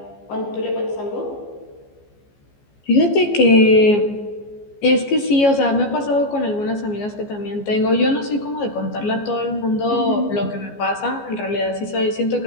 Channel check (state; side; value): late; right; 14 ms